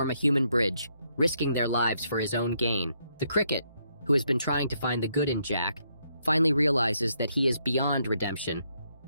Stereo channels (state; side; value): inverted; both; correlation -0.75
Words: a human bridge, risking their lives for his own gain. The cricket, who has been trying to find the good in Jack, finally realizes that he is beyond redemption,